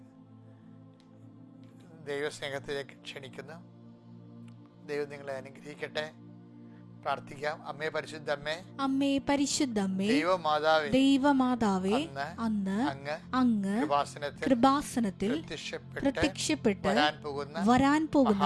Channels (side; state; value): both; identical; correlation 1.00